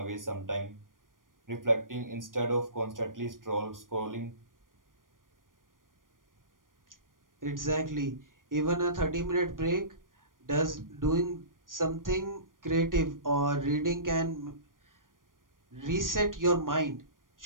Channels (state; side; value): late; left; 0.90 ms